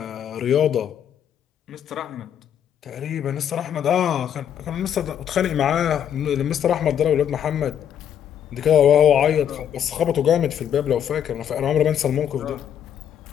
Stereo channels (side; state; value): right; quieter; 9.3 dB